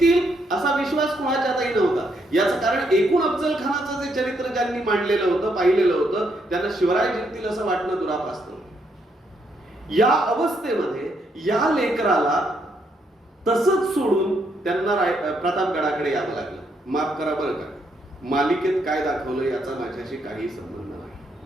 असा विश्वास कुणाच्यातही नव्हता. याचं कारण एकूण अफजल खानाचं जे चरित्र ज्यांनी मांडलेलं होतं, पाहिलेलं होतं, त्यांना शिवराय जिंकतील असं वाटणं दुरापास्त. या अवस्थेमध्ये या लेकराला तसंच सोडून त्यांना प्रतापगडाकडे यावं लागलं. माफ करा बरं का, मालिकेत काय दाखवलं याचा माझ्याशी काही संबंध नाही.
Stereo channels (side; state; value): both; normal; correlation 0.75